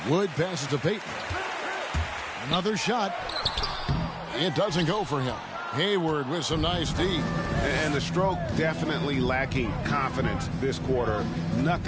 Wood passes to Payton. Another shot. It doesn't go for him. Hayward with some nice D. And the stroke definitely lacking confidence this quarter.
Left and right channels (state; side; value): identical; both; correlation 1.00